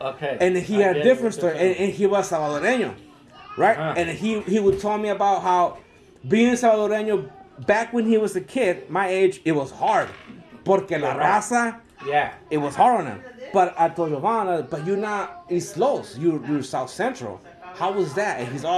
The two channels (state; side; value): identical; both; correlation 1.00